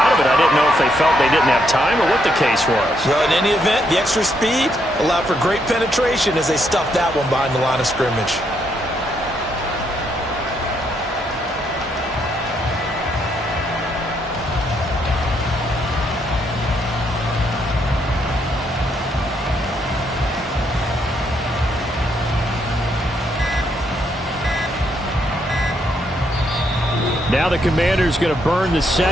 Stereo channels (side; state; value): both; normal; correlation 0.75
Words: of it. I didn't know if they felt they didn't have time or what the case was. Well, in any event, the extra speed allowed for great penetration as they stuffed that one behind the line of scrimmage. Now the Commanders going to burn the